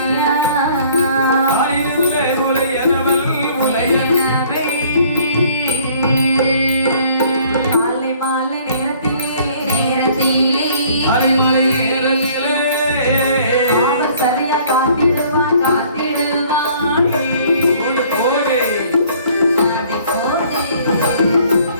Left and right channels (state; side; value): inverted; both; correlation -0.57